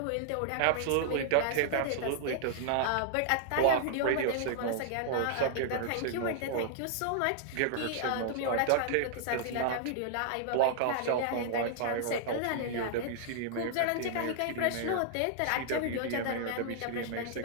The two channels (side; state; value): both; different; correlation -0.01